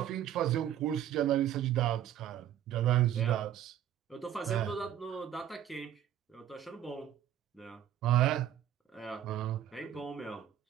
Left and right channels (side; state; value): left; quieter; 10.9 dB